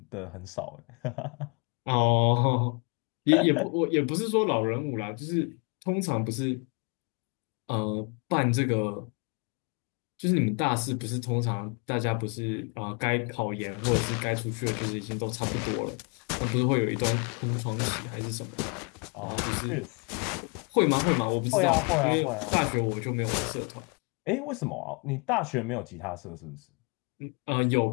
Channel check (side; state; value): right; quieter; 34.0 dB